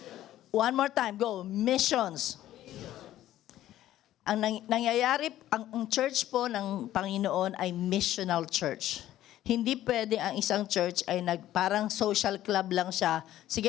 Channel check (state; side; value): quieter; right; 13.2 dB